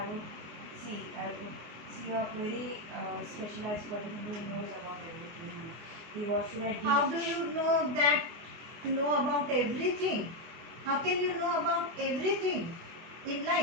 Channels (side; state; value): left; late; 24 ms